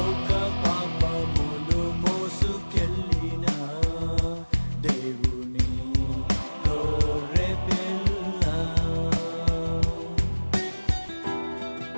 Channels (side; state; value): both; inverted; correlation -1.00